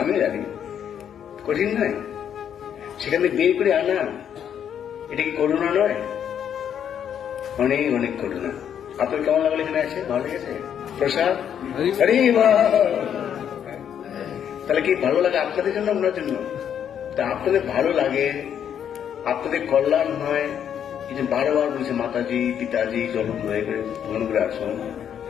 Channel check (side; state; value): right; quieter; 8.9 dB